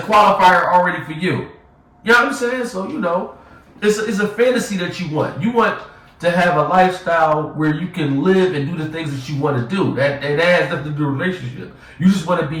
already for you. You know what I'm saying? So, you know, it's a fantasy that you want. You want to have a lifestyle where you can live and do the things that you want to do. That has nothing to do with a relationship. You just want to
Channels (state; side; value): identical; both; correlation 1.00